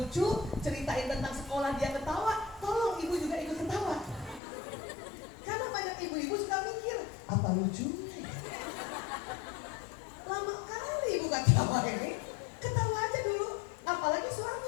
ceritain tentang sekolah dia ketawa, tolong ibu juga ikut ketawa. Karena banyak ibu-ibu suka mikir, apa lucunya? Lama kali ibu ketawa ini, ketawa aja dulu, apalagi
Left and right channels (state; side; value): drops out; right; at 4.4 s